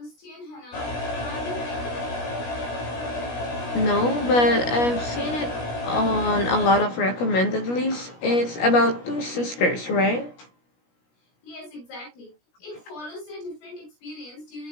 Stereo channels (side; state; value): right; late; 17 ms